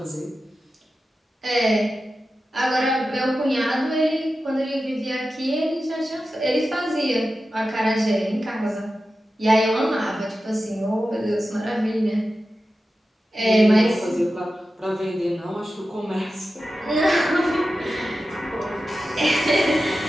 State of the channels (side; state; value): both; normal; correlation 0.93